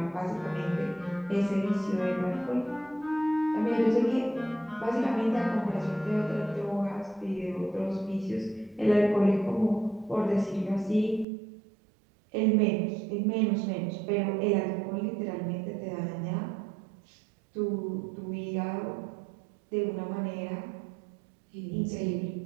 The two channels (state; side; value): drops out; left; at 11.2 s